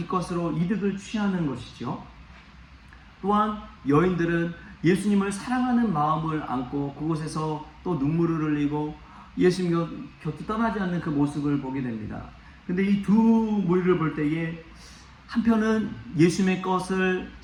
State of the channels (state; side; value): identical; both; correlation 1.00